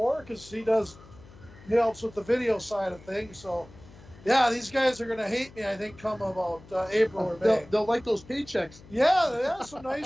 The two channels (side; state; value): left; noise; hum, 22 dB below the sound